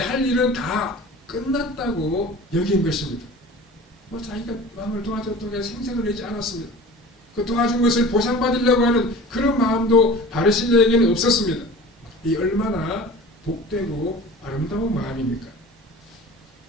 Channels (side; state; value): both; normal; correlation 0.39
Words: 일은 다 끝났다고 여긴 것입니다. 자기가 왕을 도와줬다고 생색을 내지 않았습니다. 그 도와준 것을 보상받으려고 하는 그런 마음도 바르실레에게는 없었습니다. 이 얼마나 복되고 아름다운 마음입니까?